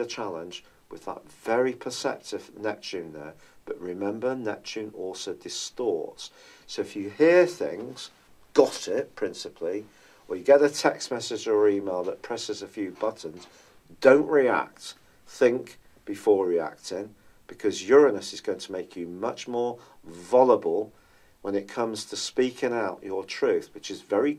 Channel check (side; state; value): both; identical; correlation 1.00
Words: challenge with that very perceptive Neptune there. But remember, Neptune also distorts. So if you hear things, gossip principally, or you get a text message or email that presses a few buttons, don't react. Think before reacting, because Uranus is going to make you much more vulnerable when it comes to speaking out your truth, which is very